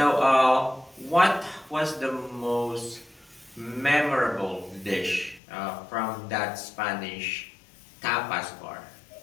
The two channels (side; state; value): right; drops out; at 5.4 s